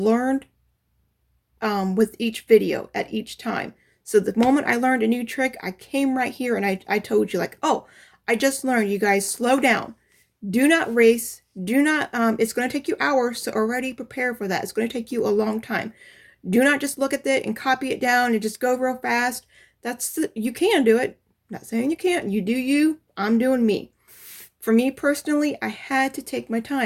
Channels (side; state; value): both; identical; correlation 1.00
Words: with each video at each time. So the moment I learned a new trick, I came right here and I told you like, oh, I just learned, you guys, slow down. Do not race. Do not, it's going to take you hours, so already prepare for that. It's going to take you a long time. Do not just look at it and copy it down and just go real fast. You can do it. I'm not saying you can't. You do you. I'm doing me. For me personally, I had to take my